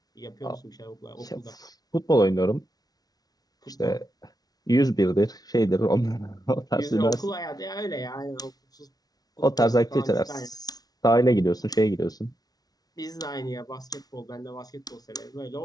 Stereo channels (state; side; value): late; right; 0.19 ms